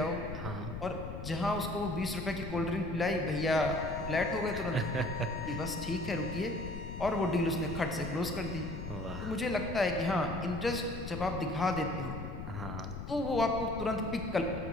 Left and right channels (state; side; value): noise; left; rumble, 8 dB below the sound